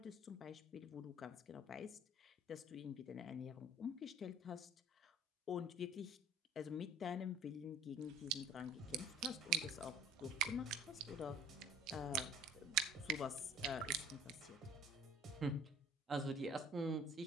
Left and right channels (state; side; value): normal; both; correlation 0.47